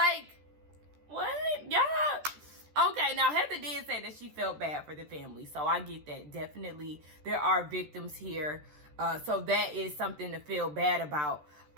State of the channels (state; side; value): late; left; 13 ms